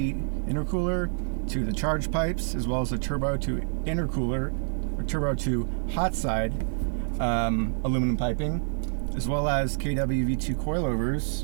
intercooler to the charge pipes, as well as a turbo to intercooler, or turbo to hot side aluminum piping, as well as KW V2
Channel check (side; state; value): left; silent; digital silence